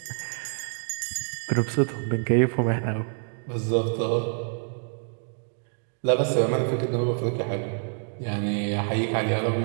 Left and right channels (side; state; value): left; silent; 56 dB below the other